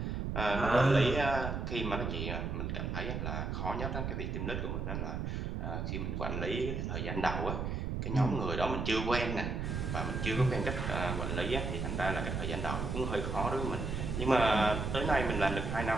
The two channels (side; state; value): right; noise; rumble, 2 dB below the sound